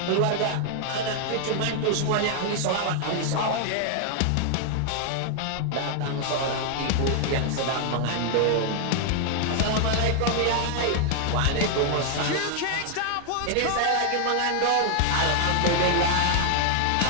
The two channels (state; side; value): different; both; correlation 0.00